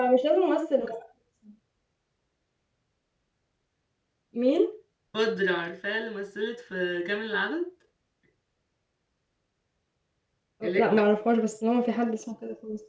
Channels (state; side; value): identical; both; correlation 1.00